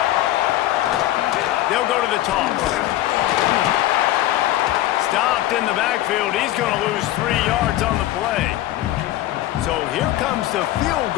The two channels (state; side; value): quieter; right; 14.7 dB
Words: They'll go to the toss. Stopped in the backfield. He's going to lose 3 yards on the play. So here comes the field